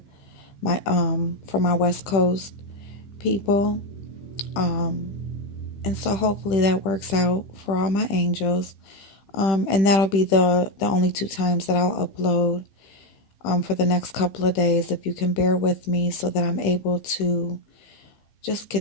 my West Coast people. And so hopefully that works out for all my angels. And that'll be the only two times that I'll upload for the next couple of days. If you can bear with me so that I'm able to just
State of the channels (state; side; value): late; right; 16 ms